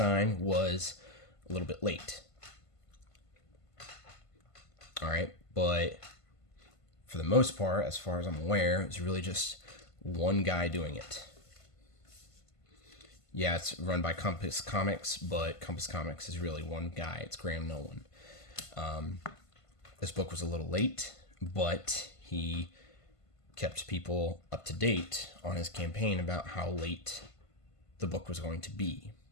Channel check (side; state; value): right; late; 1.5 ms